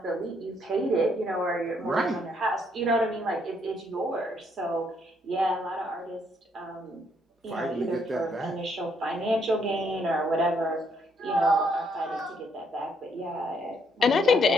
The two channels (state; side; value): normal; both; correlation 0.71